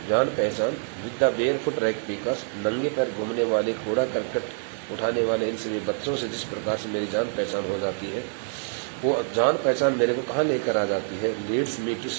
जान पहचान, with the barefoot rag pickers, नंगे पैर घूमने वाले, कूड़ा करकट उठाने वाले इन सभी बच्चों से जिस प्रकार से मेरी जान पहचान हो जाती है, वो जान पहचान मेरे को कहाँ लेकर आ जाती है, लीड्स मी टू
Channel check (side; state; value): left; silent; digital silence